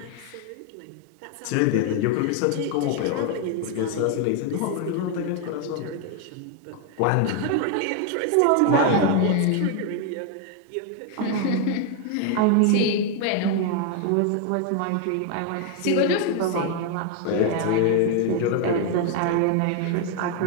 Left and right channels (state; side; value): different; both; correlation 0.01